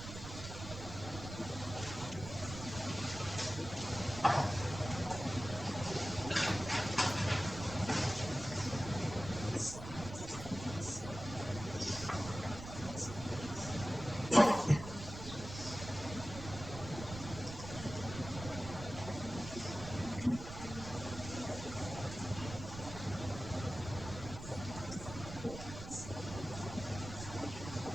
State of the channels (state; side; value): noise; right; rumble, 10 dB below the sound